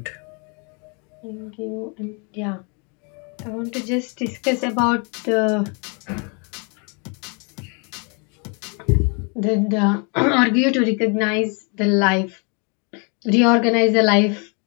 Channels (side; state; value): right; quieter; 34.9 dB